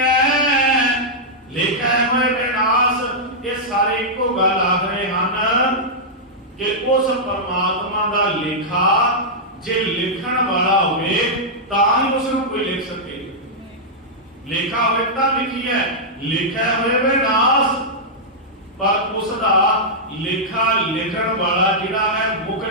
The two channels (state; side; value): normal; both; correlation -0.08